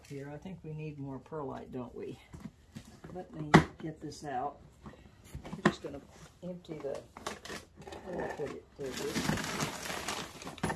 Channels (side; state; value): both; identical; correlation 1.00